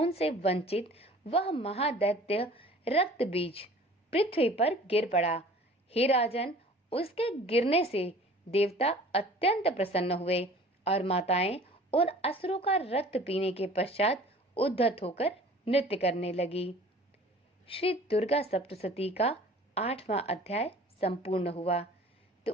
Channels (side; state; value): both; normal; correlation 0.47